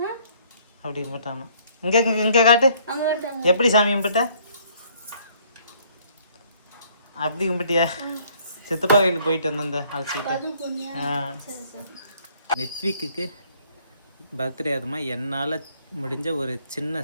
அப்படி கும்பிட்டாமா. இங்க இங்க காட்டு. எப்படி சாமி கும்பிட்ட? அப்படி கும்பிட்டியா? சித்தப்பா கோயிலுக்கு போயிட்டு வந்த அழைச்சிக்கிட்டு. நித்விக்கு பர்த்டே அதுமா என்னால் முடிஞ்ச ஒரு சின்ன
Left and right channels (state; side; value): inverted; both; correlation -0.62